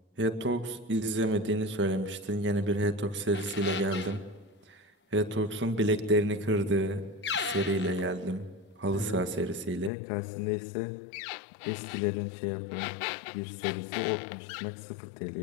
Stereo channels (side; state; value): right; drops out; at 9.9 s